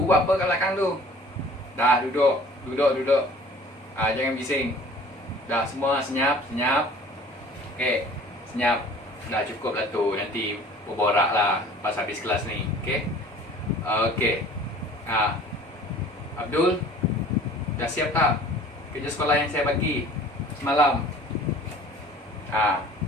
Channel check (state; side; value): normal; both; correlation 0.48